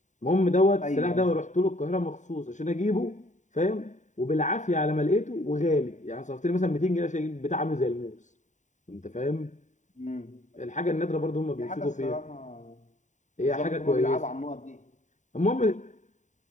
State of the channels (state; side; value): late; right; 0.35 ms